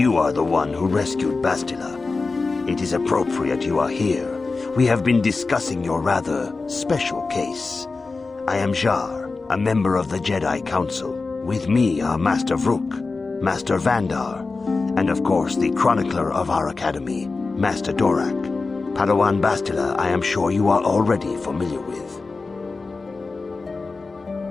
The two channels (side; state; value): right; quieter; 3.9 dB